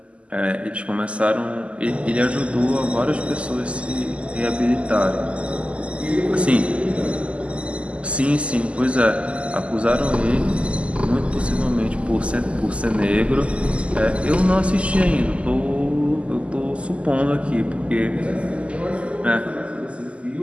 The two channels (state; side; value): late; left; 0.058 ms